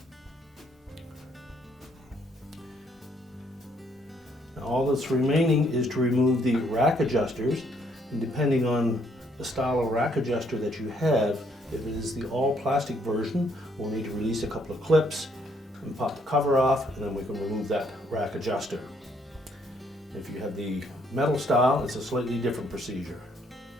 Now all that's remaining is to remove the rack adjusters, and depending on the style of rack adjuster that you have, if it is the all plastic version, we'll need to release a couple of clips and pop the cover off, and then we can remove that rack adjuster. If you have the metal style, it's a slightly different procedure.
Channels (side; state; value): both; normal; correlation 0.68